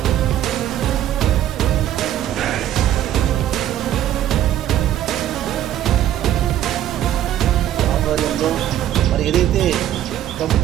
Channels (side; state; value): left; quieter; 11.9 dB